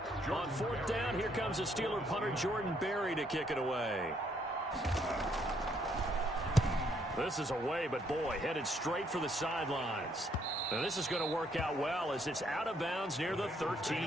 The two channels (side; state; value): both; normal; correlation 0.70